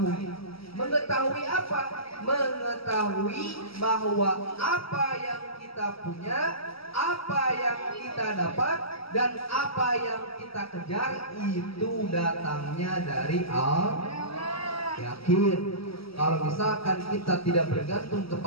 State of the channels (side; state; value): right; late; 0.75 ms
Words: Mengetahui apa? Mengetahui bahwa apa yang kita punya, apa yang kita dapat, dan apa yang kita kejar itu datangnya dari Allah. Yakin. Kalau misalkan kita tidak bergantung